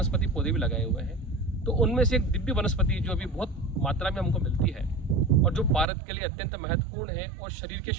पौधे भी लगाए हुए हैं। तो उनमें से एक दिव्य वनस्पति जो अभी बहुत मात्रा में हमको मिलती है और जो भारत के लिए अत्यंत महत्वपूर्ण है और शरीर के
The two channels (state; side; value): drops out; left; at 5.9 s